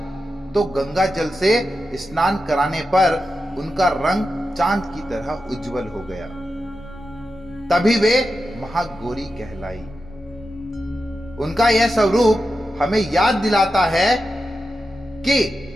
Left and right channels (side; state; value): both; normal; correlation 0.90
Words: तो गंगा जल से स्नान कराने पर उनका रंग चांद की तरह उज्जवल हो गया। तभी वे महागौरी कहलाई। उनका यह स्वरूप हमें याद दिलाता है कि